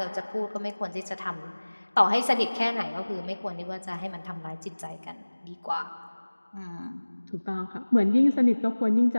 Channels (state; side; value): inverted; both; correlation -1.00